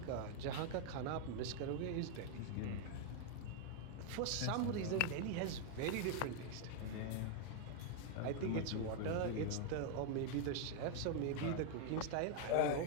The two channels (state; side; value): different; both; correlation 0.00